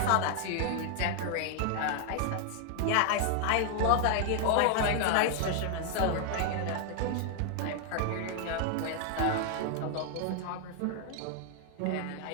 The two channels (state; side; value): different; both; correlation 0.00